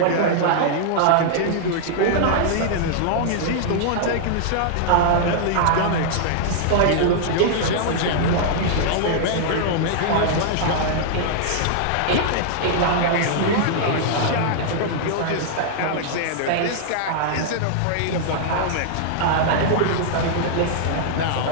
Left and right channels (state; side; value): different; both; correlation -0.01